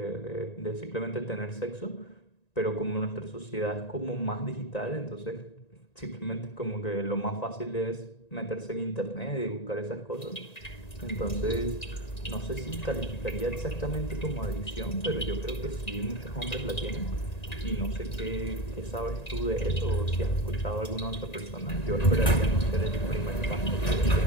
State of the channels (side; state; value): right; late; 1.9 ms